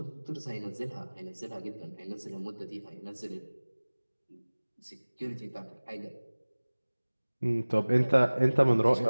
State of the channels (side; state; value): both; inverted; correlation -1.00